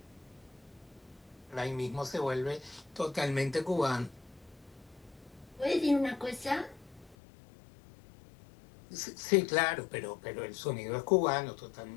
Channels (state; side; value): drops out; right; at 7.2 s